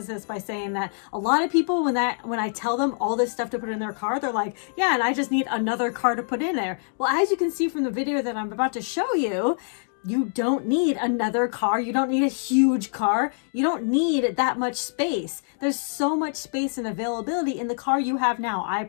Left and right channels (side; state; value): right; silent; 62 dB below the other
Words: this by saying that a lot of people, when I tell them all this stuff to put in their car, they're like, yeah, and I just need another car to put in there. Well, as you can see from the video that I'm about to show you, you don't need another car. You don't need a huge car. You don't need that much space. There's so much space and availability in the car you have now. I